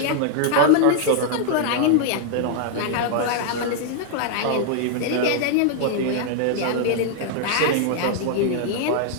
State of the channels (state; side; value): different; both; correlation -0.01